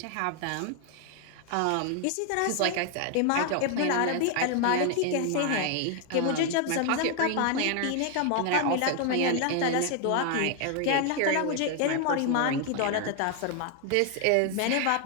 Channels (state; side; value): different; both; correlation 0.00